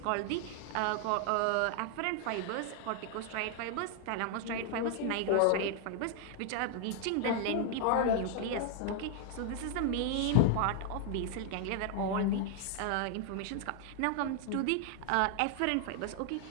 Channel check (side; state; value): both; different; correlation 0.00